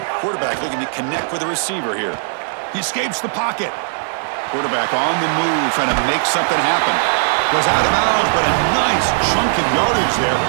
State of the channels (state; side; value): silent; left; digital silence